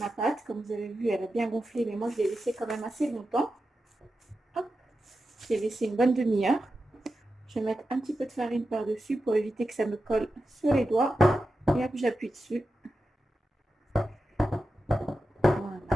pâte. Comme vous avez vu, elle a bien gonflé, mais moi, je l'ai laissée quand même assez longtemps. Hop, je l'ai laissé une bonne demi-heure. Je vais mettre un petit peu de farine par-dessus pour éviter que ça me colle sur les doigts. Et hop, j'appuie dessus. Voilà.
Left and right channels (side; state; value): both; normal; correlation 0.91